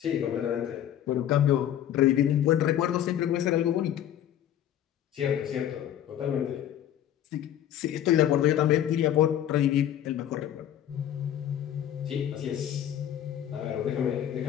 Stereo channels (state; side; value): quieter; right; 11.0 dB